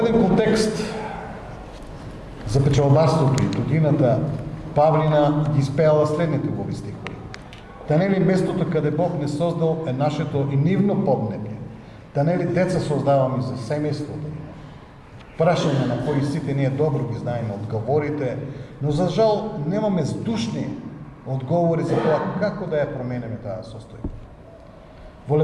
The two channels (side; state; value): both; identical; correlation 1.00